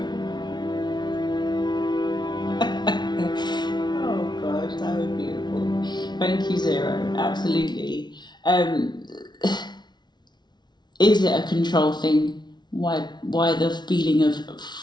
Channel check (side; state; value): right; late; 0.20 ms